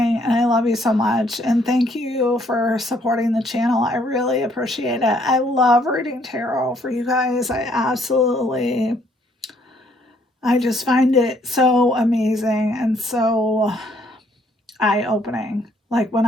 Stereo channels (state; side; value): normal; both; correlation 0.67